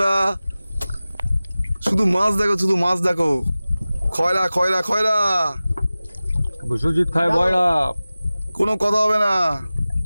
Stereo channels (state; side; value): inverted; both; correlation -0.97